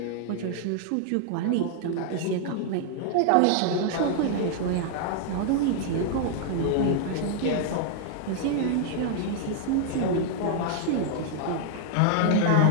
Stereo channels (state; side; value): different; both; correlation -0.01